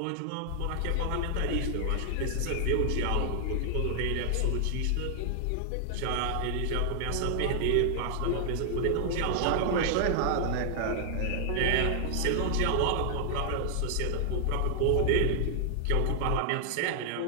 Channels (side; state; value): both; different; correlation 0.00